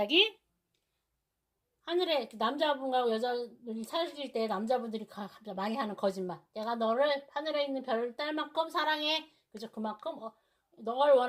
하늘에 남자분과 여자분이 사귈 때 남자분들이 많이 하는 거짓말. 내가 너를 하늘에 있는 별을 딸 만큼 사랑해. 그죠? 그만큼 널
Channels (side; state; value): both; identical; correlation 1.00